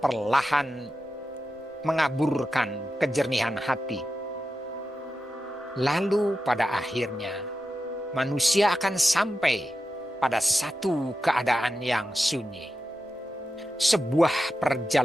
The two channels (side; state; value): both; normal; correlation 0.90